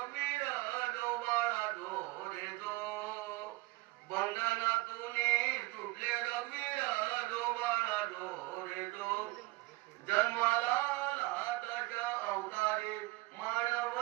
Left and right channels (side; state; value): left; quieter; 22.7 dB